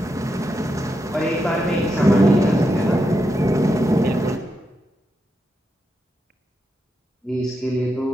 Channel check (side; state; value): both; normal; correlation 0.85